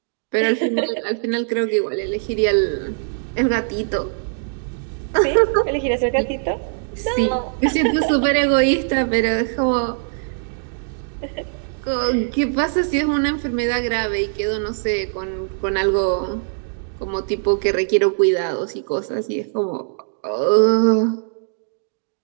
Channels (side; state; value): left; silent; digital silence